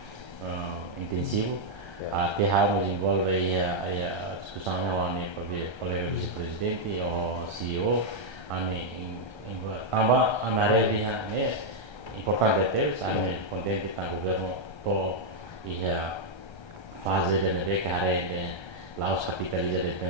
intensivo até harus envolve a discussão com o colega vice-presidente ou CEO também a área de importante é contente com o governo to ia fazer de carreira lá os capitaliza de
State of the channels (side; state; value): right; late; 1.3 ms